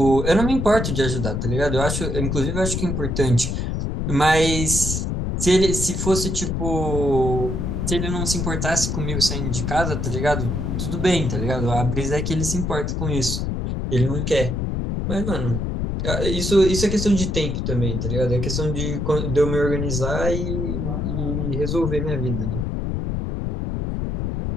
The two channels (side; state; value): left; noise; rumble, 1 dB below the sound